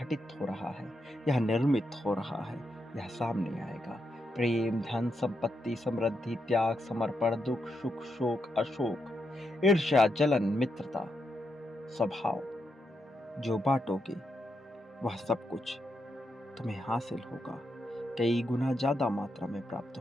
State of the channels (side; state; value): both; normal; correlation 0.83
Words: हो रहा है, यह निर्मित हो रहा है, यह सामने आएगा। प्रेम, धन, संपत्ति, समृद्धि, त्याग, समर्पण, दुख, सुख, शोक, अशोक, ईर्ष्या, जलन, मित्रता, स्वभाव, जो बांटोगे वह सब कुछ तुम्हें हासिल होगा। कई गुना ज्यादा मात्रा में प्राप्त